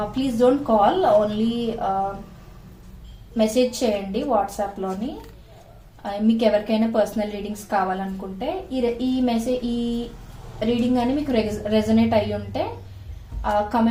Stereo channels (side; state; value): both; identical; correlation 1.00